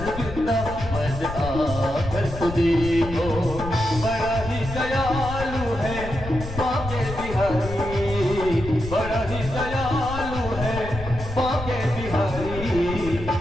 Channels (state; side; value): noise; left; rumble, 9 dB below the sound